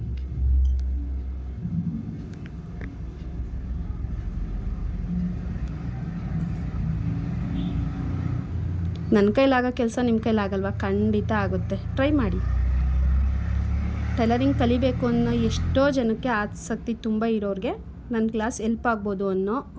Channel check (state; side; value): identical; both; correlation 1.00